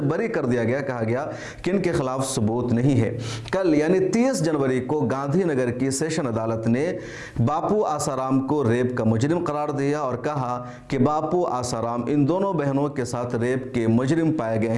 बरी कर दिया गया, कहा गया कि इनके खिलाफ सबूत नहीं है। कल यानी 30 जनवरी को गांधीनगर की सेशन अदालत ने बापू आसाराम को रेप का मुजरिम करार दिया और कहा कि बापू आसाराम इन दोनों बहनों के साथ रेप के मुजरिम पाए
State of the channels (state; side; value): identical; both; correlation 1.00